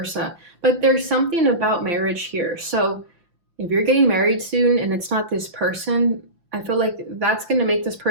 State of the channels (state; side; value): late; left; 5.8 ms